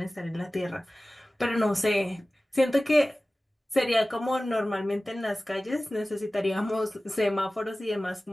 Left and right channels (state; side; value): normal; both; correlation 0.97